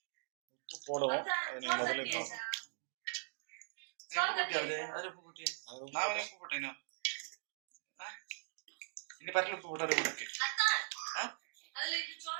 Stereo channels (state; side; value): silent; left; digital silence